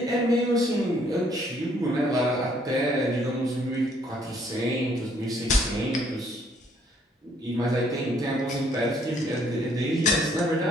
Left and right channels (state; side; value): normal; both; correlation 0.65